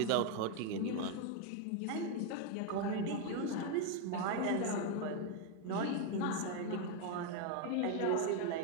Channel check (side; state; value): both; different; correlation 0.01